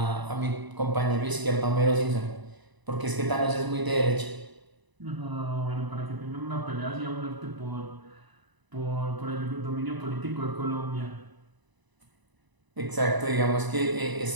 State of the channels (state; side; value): late; left; 1.0 ms